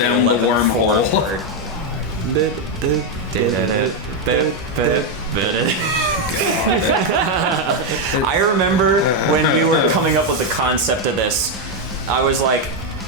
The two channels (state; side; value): normal; both; correlation 0.03